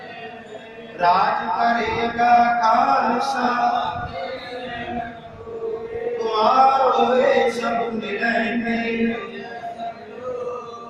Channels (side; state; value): both; identical; correlation 1.00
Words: राज करेगा खालसा द्वार होए सब मिलेंगे